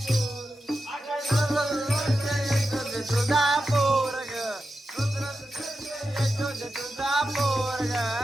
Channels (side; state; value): both; normal; correlation 0.90